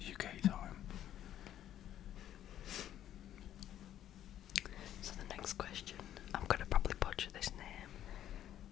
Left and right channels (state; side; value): quieter; right; 11.4 dB